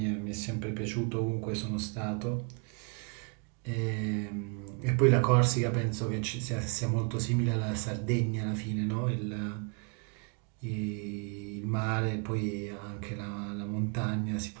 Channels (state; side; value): quieter; left; 36.7 dB